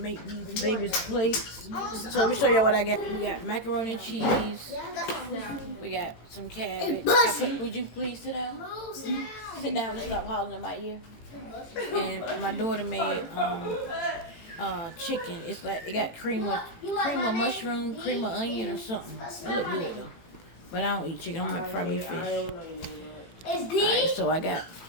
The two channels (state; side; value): late; right; 18 ms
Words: these babies plates. So let me show y'all what I got. We got macaroni and cheese. We got some cabbage. Would you please sit down? Sit down and stop hollering in my ear. And my daughter made chicken. It's like it got cream of mushroom, cream of onion or something. It look good though. But I don't eat chicken. I'm gonna fry me fish. Alright, so I got